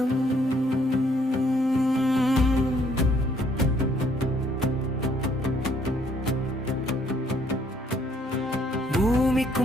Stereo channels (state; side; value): normal; both; correlation 0.66